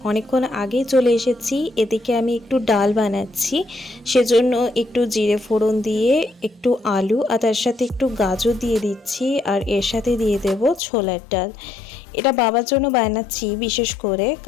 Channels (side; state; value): right; drops out; at 10.8 s